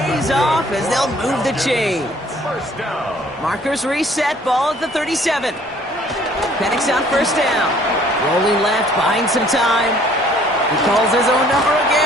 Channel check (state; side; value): normal; both; correlation 0.58